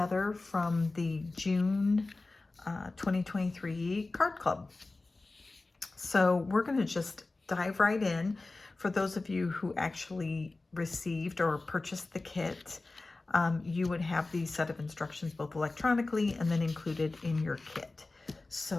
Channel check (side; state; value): right; quieter; 3.3 dB